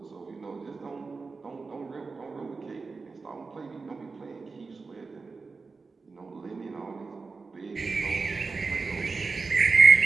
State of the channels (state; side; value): quieter; left; 4.3 dB